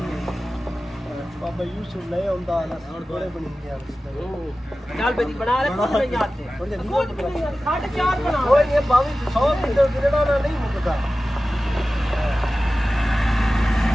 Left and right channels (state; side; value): normal; both; correlation 0.95